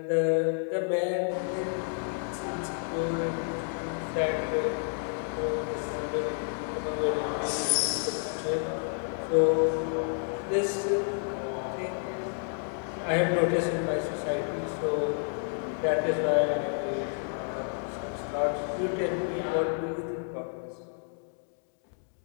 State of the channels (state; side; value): silent; right; 58 dB below the other